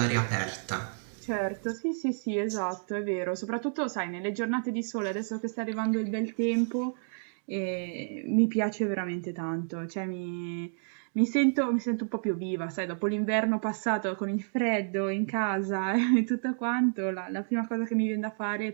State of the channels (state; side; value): silent; left; digital silence